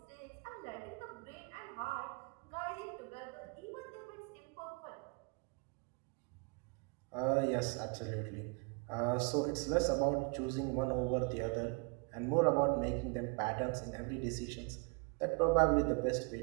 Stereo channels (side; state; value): left; quieter; 32.8 dB